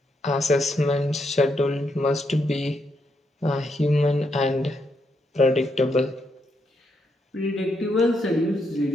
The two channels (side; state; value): both; normal; correlation 0.79